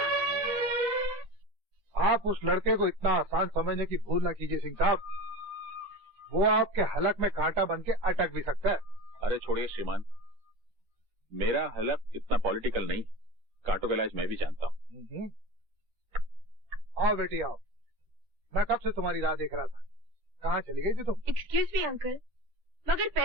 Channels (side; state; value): left; late; 10 ms